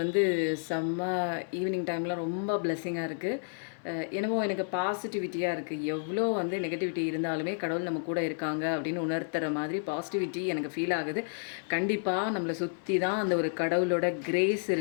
வந்து செம்ம ஈவினிங் டைமில் ரொம்ப பிளெஸ்ஸிங்காக இருக்குது. என்னமோ எனக்கு பாசிட்டிவிட்டியாக இருக்குது. எவ்வளோ வந்து நெகட்டிவிட்டி இருந்தாலுமே கடவுள் நம்ம கூட இருக்காங்க அப்படின்னு உணர்த்துற மாதிரி பாசிட்டிவிட்டி எனக்கு ஃபீல் ஆகுது. கண்டிப்பாக நம்மளை சுற்றி தான் அந்த ஒரு கடவுளோட கிரேஸ்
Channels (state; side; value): silent; right; 57 dB below the other